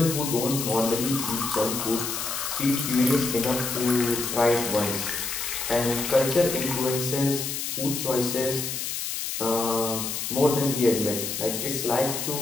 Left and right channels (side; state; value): left; noise; hiss, 3 dB below the sound